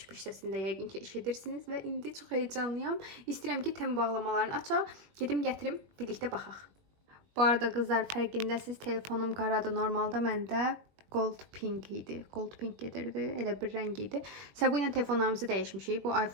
səsində yəqin ki, eşidirsiniz. Və indi çox heyecanlıyam. İstəyirəm ki, tem bağlamalarını açaq. Gedim gətirim, birlikdə baxaq. Bu arada qızlar, fərqindəsiz, telefonum qaradır. Normalda məndə gold pink idi. Gold pink gedirdi. Elə bir rəng idi. Bu ilə telefonlarımızı dəyişmişik. Bu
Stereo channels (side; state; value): left; late; 20 ms